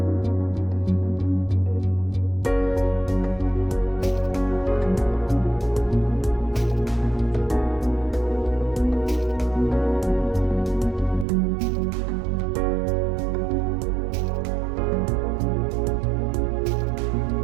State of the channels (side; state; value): left; drops out; at 11.2 s